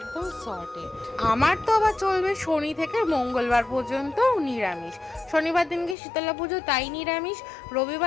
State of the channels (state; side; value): drops out; right; at 6.0 s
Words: সর্টেড। আমার তো আবার চলবে শনি থেকে মঙ্গলবার পর্যন্ত নিরামিষ। শনিবার দিনকে শীতলা পুজো, তাই নিরামিষ।